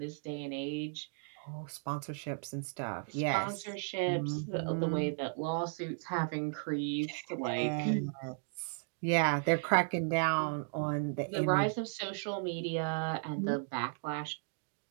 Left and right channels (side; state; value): left; silent; digital silence